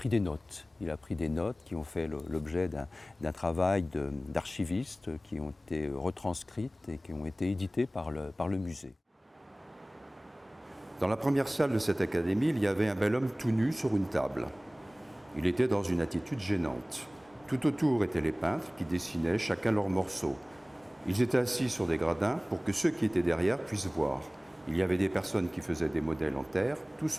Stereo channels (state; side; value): normal; both; correlation 0.98